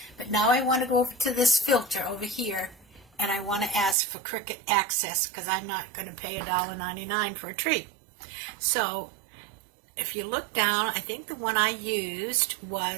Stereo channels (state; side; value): drops out; left; at 4.0 s